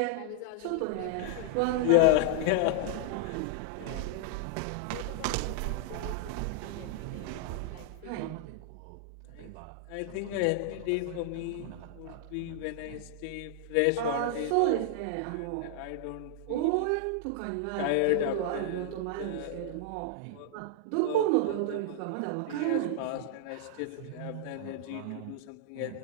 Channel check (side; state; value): both; different; correlation -0.01